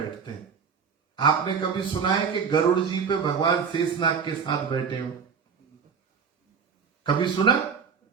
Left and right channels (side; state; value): left; quieter; 6.3 dB